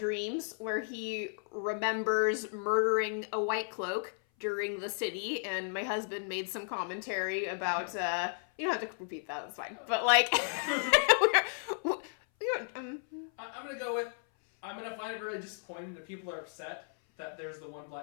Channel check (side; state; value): right; silent; 55 dB below the other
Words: where he remembers murdering a White Cloak during the city, and my husband made some commentary about. You don't have to repeat that. It's fine. But like, I'm gonna go with. I'm gonna find it really disappointing that people are upset that there's the one